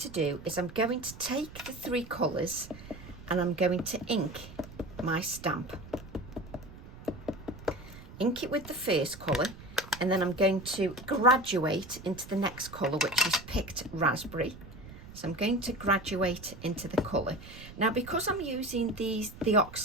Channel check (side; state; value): right; noise; rumble, 16 dB below the sound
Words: do is I'm going to take the 3 colours and I'm going to ink my stamp. Ink it with the first colour, and then I'm going to graduate into the next colour, which is Picked Raspberry. So I'm going to graduate into the colour. Now, because I'm using the